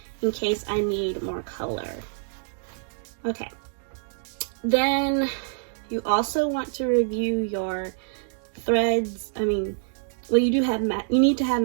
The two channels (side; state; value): left; silent; digital silence